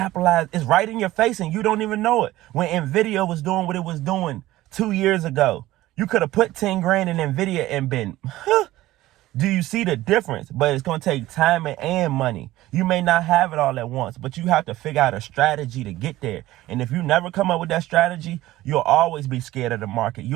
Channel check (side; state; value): left; quieter; 16.3 dB